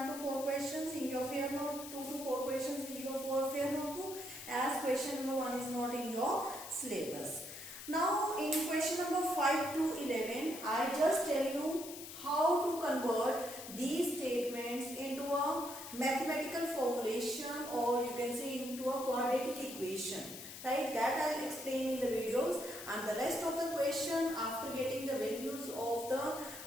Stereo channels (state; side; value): noise; left; hiss, 11 dB below the sound